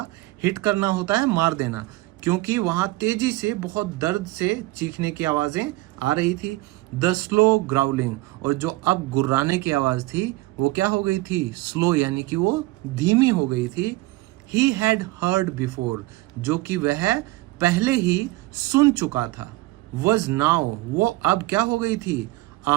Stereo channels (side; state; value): left; quieter; 19.6 dB